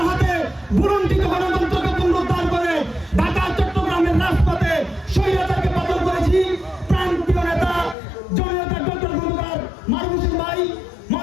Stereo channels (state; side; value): drops out; right; at 8.0 s